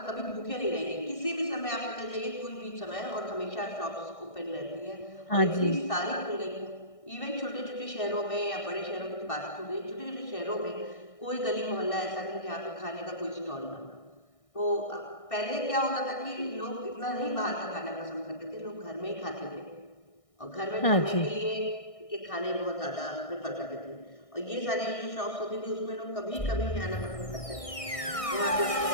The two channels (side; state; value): right; late; 1.6 ms